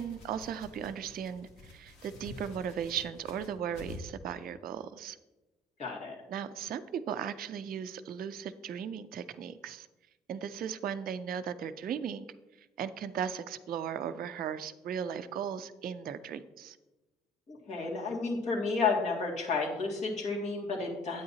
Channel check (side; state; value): both; normal; correlation 0.46